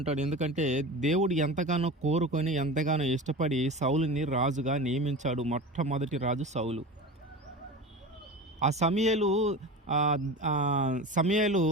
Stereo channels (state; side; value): normal; both; correlation 0.30